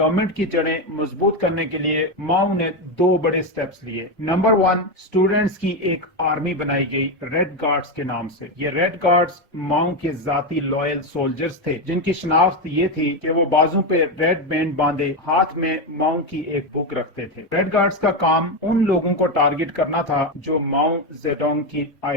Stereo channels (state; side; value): normal; both; correlation 0.10